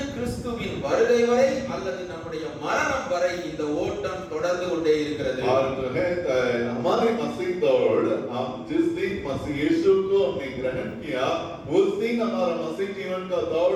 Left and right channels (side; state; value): both; identical; correlation 1.00